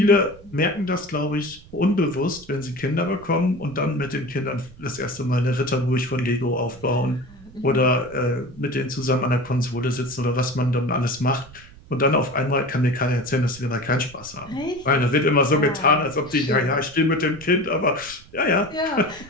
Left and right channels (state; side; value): noise; right; rumble, 21 dB below the sound